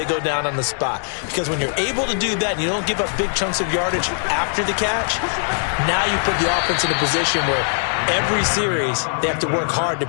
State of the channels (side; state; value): right; silent; 56 dB below the other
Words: go down on the spot. Because when you're able to do that and you don't give up big chunks of yardage after the catch, now you put the offense in a position where every series they have to work hard to